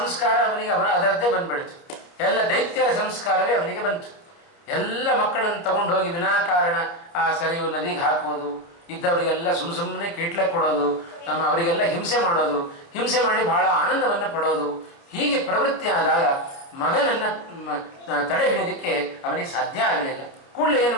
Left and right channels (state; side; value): late; right; 29 ms